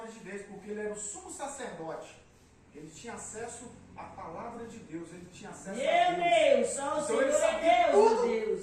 de Deus, porque ele era o sumo sacerdote. Ele tinha acesso à palavra de Deus, ele tinha acesso a Deus. Meu Deus, só o Então Senhor ele é sabia Deus, tudo meu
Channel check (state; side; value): identical; both; correlation 1.00